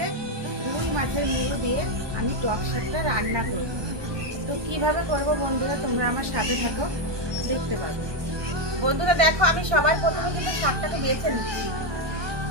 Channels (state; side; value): late; left; 1.2 ms